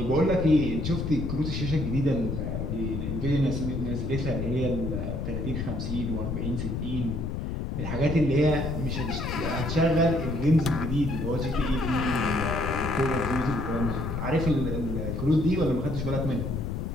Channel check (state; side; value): noise; left; rumble, 3 dB below the sound